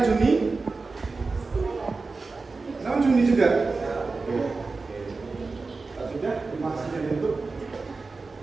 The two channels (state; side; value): quieter; left; 4.0 dB